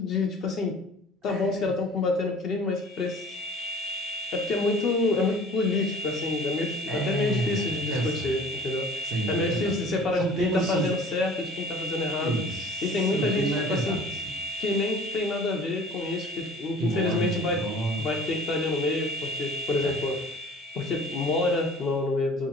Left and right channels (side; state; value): both; normal; correlation 0.47